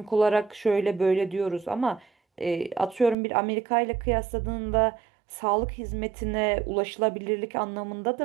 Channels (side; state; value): left; drops out; at 3.2 s